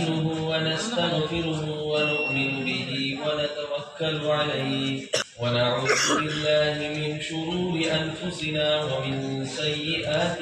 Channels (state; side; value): identical; both; correlation 1.00